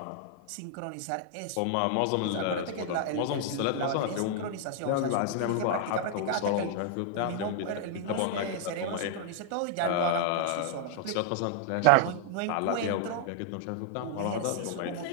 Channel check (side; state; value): both; different; correlation 0.00